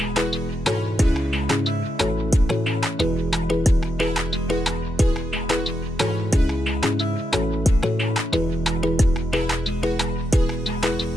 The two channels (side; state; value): both; normal; correlation 0.84